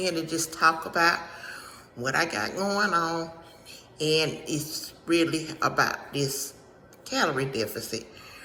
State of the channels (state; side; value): identical; both; correlation 1.00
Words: to just talk about what I got going on, and it's really about this calorie deficit